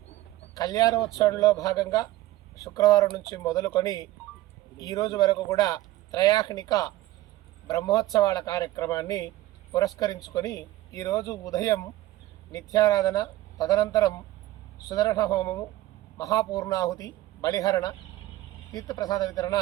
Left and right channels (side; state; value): left; quieter; 16.1 dB